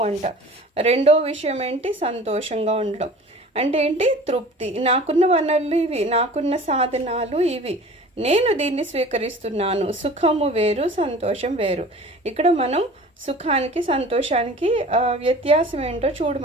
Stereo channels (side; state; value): both; normal; correlation 0.42